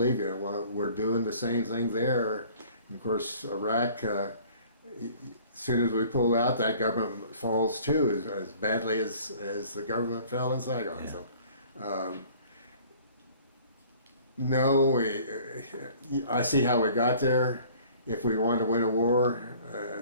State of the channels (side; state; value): both; inverted; correlation -0.52